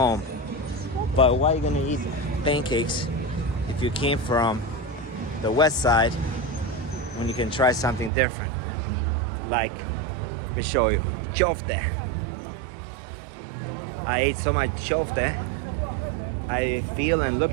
But why are you gonna eat pancakes if you came from the west side when you can try something different? Like, let me show you, chofte. I ate so much chofte, I feel and look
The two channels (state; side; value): drops out; left; at 8.1 s